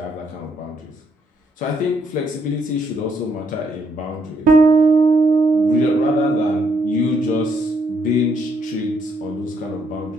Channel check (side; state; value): both; normal; correlation 0.73